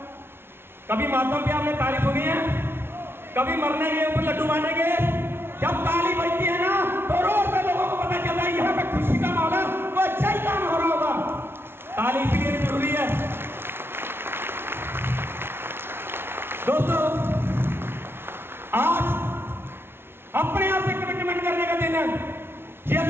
कभी मातम पे आपने ताली सुनी है? कभी मरने के ऊपर लड्डू बांटेंगे? जब ताली बजती है ना तो रोड पे लोगों को पता चलता है यहाँ पे खुशी का माहौल है, तो अच्छा ही काम हो रहा होगा। ताली इसलिए जरूरी है दोस्तों। आज अपने आप से कमिटमेंट करने का दिन है कि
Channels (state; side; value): late; left; 0.11 ms